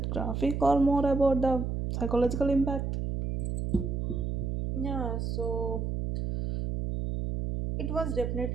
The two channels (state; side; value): noise; right; hum, 2 dB below the sound